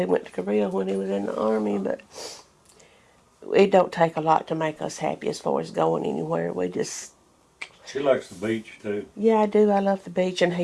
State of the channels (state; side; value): identical; both; correlation 1.00